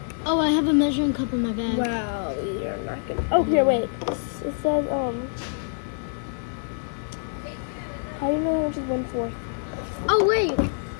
Oh, I have a measuring cup in my bag. Wow, you're not gonna. Oh, here, wait. It says How do you know how much is 1/4? Oh, wait.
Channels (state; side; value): silent; right; digital silence